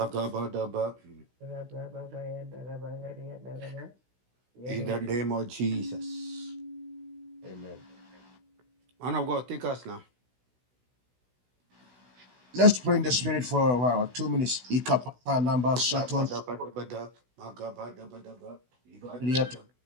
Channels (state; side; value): late; left; 16 ms